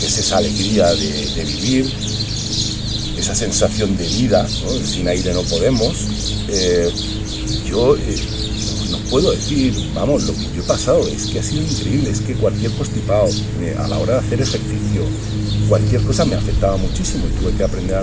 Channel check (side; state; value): both; identical; correlation 1.00